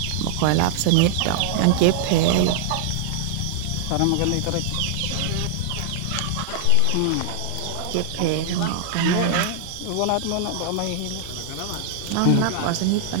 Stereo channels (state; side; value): different; both; correlation -0.01